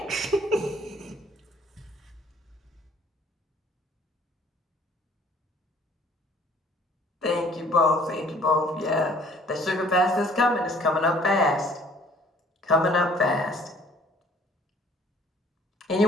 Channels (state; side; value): normal; both; correlation 0.56